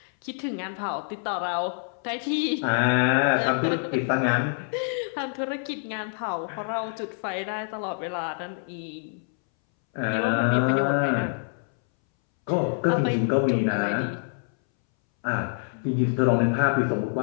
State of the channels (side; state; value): right; silent; 61 dB below the other